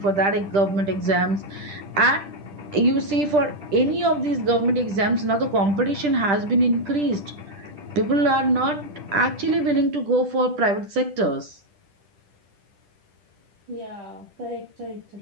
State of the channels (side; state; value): left; late; 10 ms